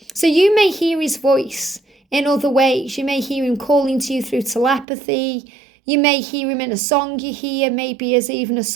So you may hear his voice in other ways. You may hear him calling to you through telepathy. You may hear him in a song you hear, maybe as even a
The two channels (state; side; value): drops out; left; at 4.9 s